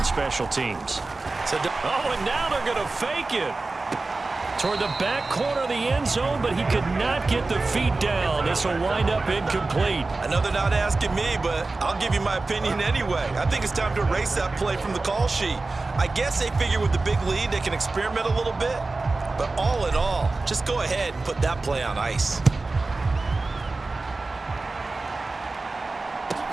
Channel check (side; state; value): left; quieter; 3.5 dB